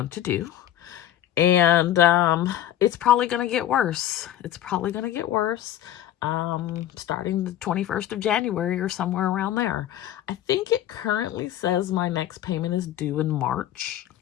to do. And it's probably going to get worse. Starting the 21st of January or somewhere around there. I think it currently says my next payment is due in March.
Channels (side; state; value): right; quieter; 11.9 dB